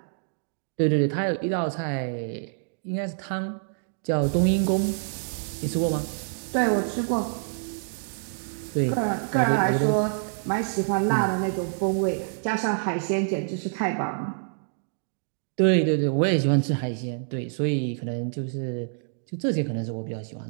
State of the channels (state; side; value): silent; left; digital silence